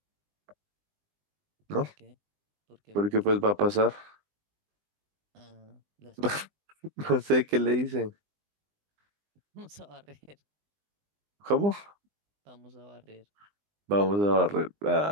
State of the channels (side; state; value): left; late; 20 ms